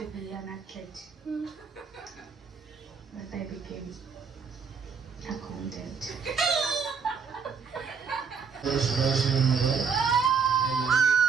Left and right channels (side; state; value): left; quieter; 6.0 dB